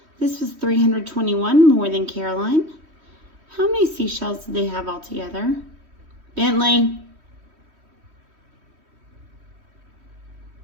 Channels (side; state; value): left; late; 3.1 ms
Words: This was 321 more than Caroline. How many seashells did they have all together? Bentley.